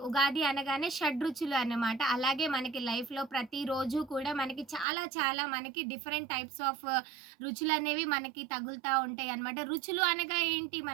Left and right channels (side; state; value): left; drops out; at 4.9 s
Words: ఉగాది అనగానే షడ్రుచులు అన్నమాట. అలాగే మనకి లైఫ్లో ప్రతిరోజు కూడా మనకి చాలా మనకి డిఫరెంట్ టైప్స్ ఆఫ్ రుచులు అనేవి మనకి తగులుతూ ఉంటాయి అన్నమాట. రుచులు అనగా ఏంటి,